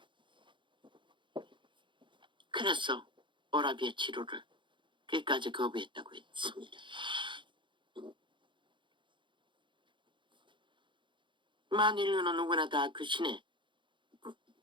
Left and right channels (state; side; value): late; left; 0.23 ms